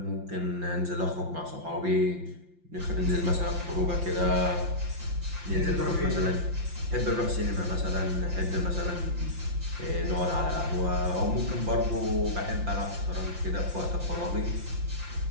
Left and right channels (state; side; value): late; left; 5.7 ms